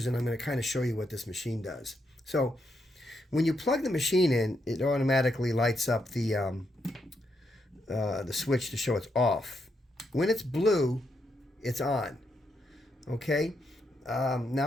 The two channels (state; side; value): normal; both; correlation 0.80